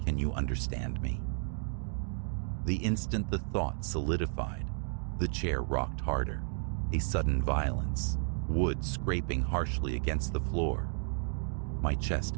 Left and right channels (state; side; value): silent; left; 56 dB below the other